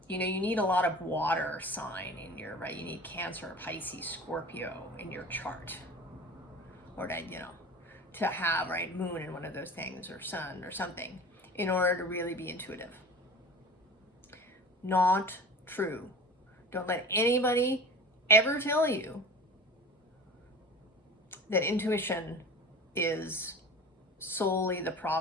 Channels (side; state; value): both; normal; correlation 0.37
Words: you need a lot of water sign in your, right? You need Cancer, Pisces, Scorpio in your chart. Or to have, right, moon in one of those things, or sun or something, in order to really be intuitive. Not true. Don't let anybody ever tell you that intuition is solely the